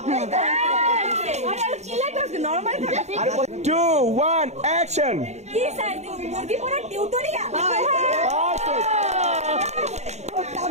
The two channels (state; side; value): late; left; 0.32 ms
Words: আরে চিলা করতে নরমাল থাকে। 2 1 অ্যাকশন। কি স্যার মুরগি পোড়া টিউটোরিয়াল।